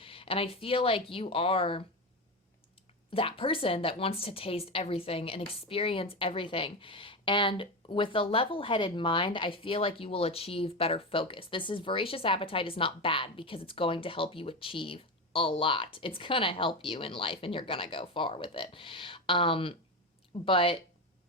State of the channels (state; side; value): normal; both; correlation 0.18